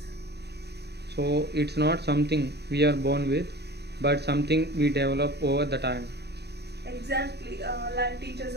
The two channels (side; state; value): left; late; 0.48 ms